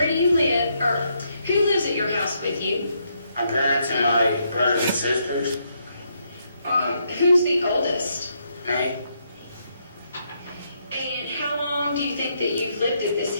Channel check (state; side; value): inverted; both; correlation -0.76